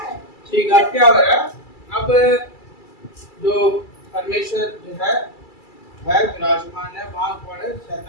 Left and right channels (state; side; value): late; right; 2.3 ms